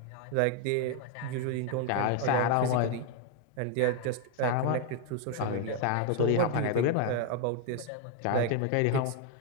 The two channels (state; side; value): different; both; correlation 0.01